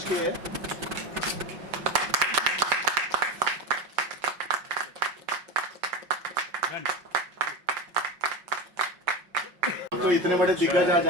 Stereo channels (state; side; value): late; left; 5.6 ms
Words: किए हैं। तो इतने बड़े दिग्गज आज